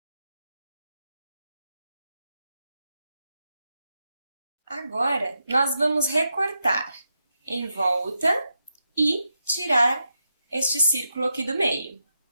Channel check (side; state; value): both; inverted; correlation -0.86